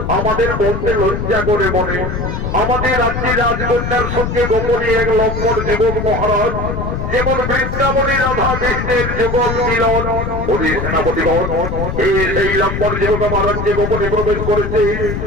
আমাদের বলতে লজ্জা করে মনে। আমাদের রাজ্যের রাজকন্যার সঙ্গে গোপনে এক লম্বর যুবক মহারাজ, যেমন বৃন্দাবনে রাধা কৃষ্ণের যুগল মিলন। ওদের সেনাপতিগণ সেই লম্বর যুবক আমার রাজ্যে গোপনে প্রবেশ করেছে।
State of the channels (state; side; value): noise; left; rumble, 4 dB below the sound